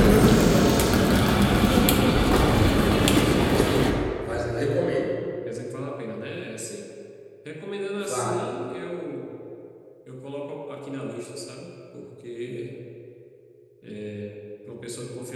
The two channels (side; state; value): both; identical; correlation 1.00